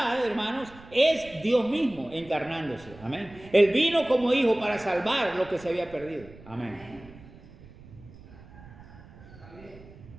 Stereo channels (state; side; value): noise; right; rumble, 20 dB below the sound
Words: hermanos, es Dios mismo encarnándose. Amén. Él vino como hijo para salvar lo que se había perdido. Amén.